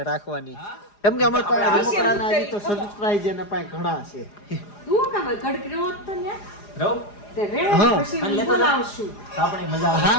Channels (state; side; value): late; right; 4.9 ms